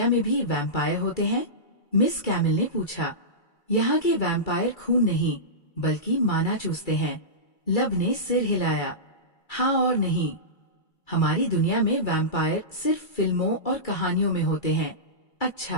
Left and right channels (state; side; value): late; right; 2.3 ms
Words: में भी वैम्पायर होते हैं? मिस कैमिल ने पूछा। यहाँ के वैम्पायर खून नहीं, बल्कि माना चूसते हैं। लब ने सिर हिलाया। हाँ और नहीं। हमारी दुनिया में वैम्पायर सिर्फ फिल्मों और कहानियों में होते हैं।